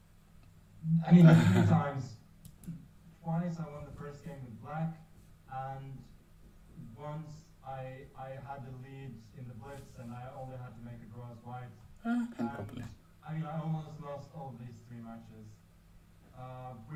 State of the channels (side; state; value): both; identical; correlation 1.00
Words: mean, 3 times. Twice I won the first game with black, and once I had the lead in the blitz, and I only had to make a draw as white. Can't And, complain. I mean, I almost lost all these 3 matches,